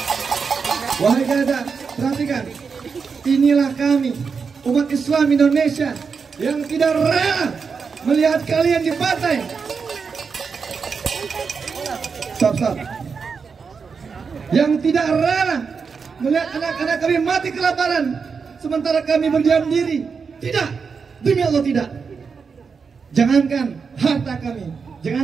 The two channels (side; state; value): left; quieter; 5.5 dB